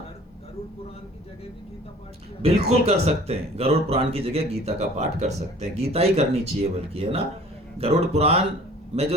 गरुड़ पुराण की जगह भी गीता पाठ किया बिल्कुल कर सकते हैं, गरुड़ पुराण की जगह गीता का पाठ कर सकते हैं। गीता ही करनी चाहिए बल्कि, है ना। गरुड़ पुराण में जो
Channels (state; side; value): normal; both; correlation 0.49